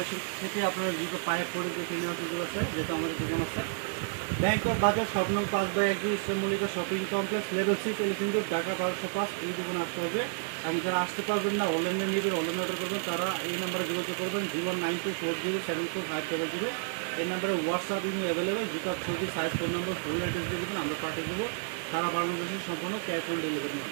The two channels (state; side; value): silent; left; 57 dB below the other